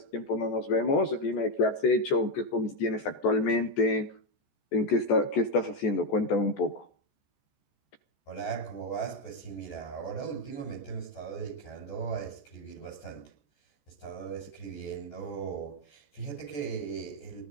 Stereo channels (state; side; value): late; right; 14 ms